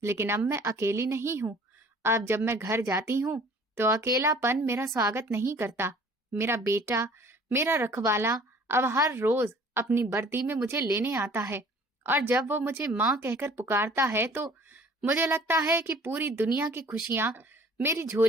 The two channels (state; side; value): normal; both; correlation 0.51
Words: लेकिन अब मैं अकेली नहीं हूँ। अब जब मैं घर जाती हूँ तो अकेलापन मेरा स्वागत नहीं करता। मेरा बेटा, मेरा रखवाला अब हर रोज अपनी वर्दी में मुझे लेने आता है, और जब वो मुझे माँ कहकर पुकारता है तो मुझे लगता है कि पूरी दुनिया की खुशियां मेरी